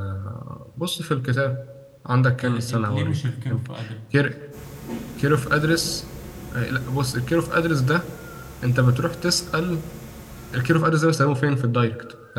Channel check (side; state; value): both; identical; correlation 1.00